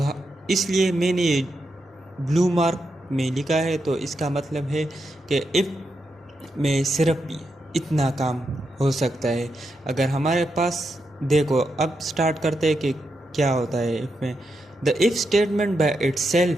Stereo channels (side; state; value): both; normal; correlation 0.85